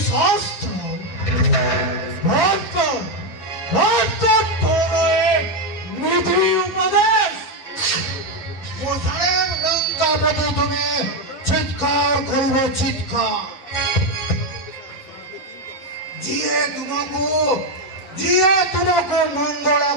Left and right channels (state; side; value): late; right; 11 ms